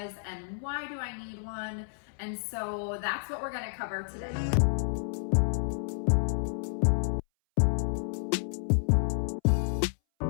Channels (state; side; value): silent; right; 58 dB below the other